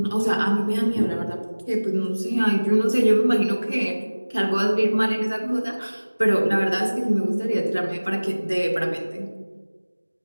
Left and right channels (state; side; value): inverted; both; correlation -1.00